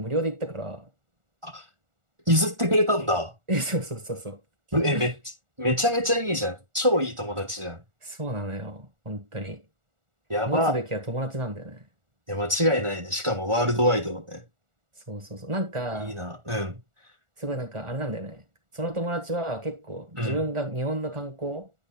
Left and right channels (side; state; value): left; late; 1.4 ms